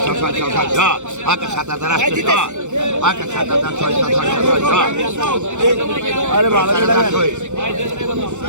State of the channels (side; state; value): left; late; 0.84 ms